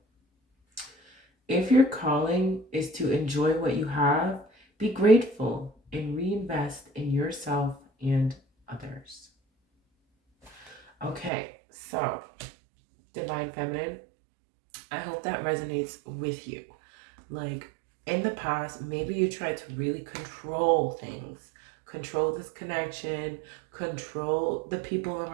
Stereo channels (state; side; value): drops out; left; at 11.3 s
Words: If your calling is to enjoy what you have, be grateful and reinvest in yourself and others. Okay, so Divine Feminine, I hope that resonates with you. Like, in the past, maybe you tried to really control things, control this connection, control the people